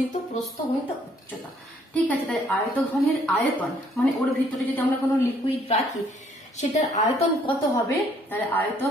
প্রস্থ গুণিত উচ্চতা। ঠিক আছে, তাই আয়তঘনের আয়তন মানে ওর ভিতরে যদি আমরা কোনো লিকুইড রাখি সেটার আয়তন কত হবে। তাহলে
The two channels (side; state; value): both; normal; correlation 0.65